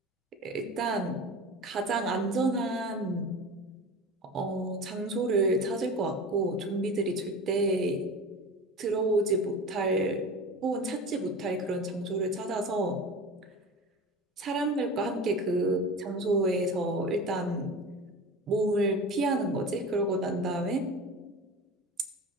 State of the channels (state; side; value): normal; both; correlation 0.33